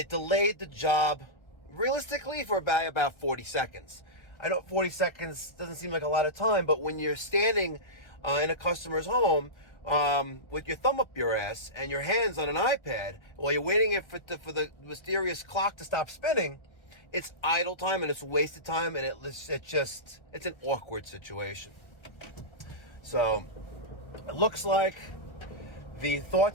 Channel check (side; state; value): right; late; 1.3 ms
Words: delayed the job realistically for about 40 seconds. I know 40 seconds doesn't seem like a lot of time, but when you're standing in a customer's home with your thumb up your ass and your hands on an iPad while you're waiting for the mysterious clock to stop spinning, it's idle time and it's wasted time, and it's an awkward situation. So it looks like the